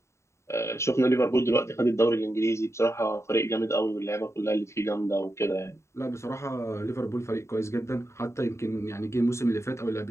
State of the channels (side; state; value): right; late; 0.14 ms